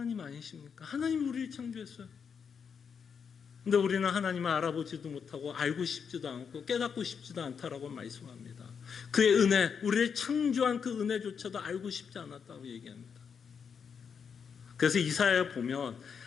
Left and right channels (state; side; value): quieter; right; 6.6 dB